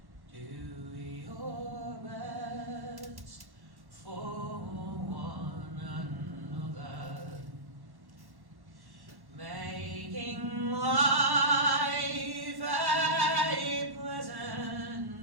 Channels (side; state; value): left; late; 1.1 ms